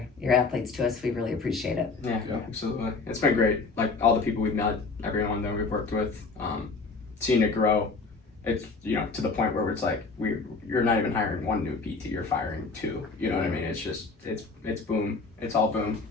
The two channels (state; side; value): quieter; right; 4.1 dB